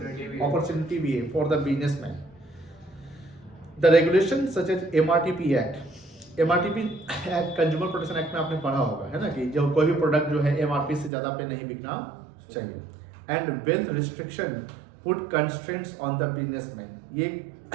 अपॉर्चुनिटी भी है for the businessman. The regulation such as MRTP act, MRTP act consumer protection act में आपने पढ़ा होगा, है ना, कि जो कोई भी प्रोडक्ट जो है MRP से ज्यादा पे नहीं बिकना चाहिए। And wealth restriction put constraints on the businessman, ये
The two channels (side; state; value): left; drops out; at 11.1 s